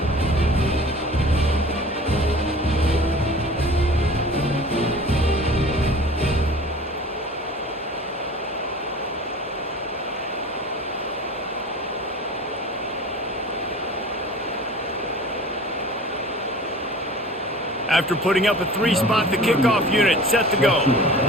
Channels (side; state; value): both; normal; correlation 0.42